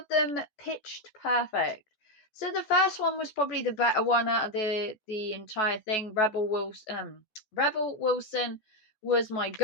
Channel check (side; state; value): right; late; 14 ms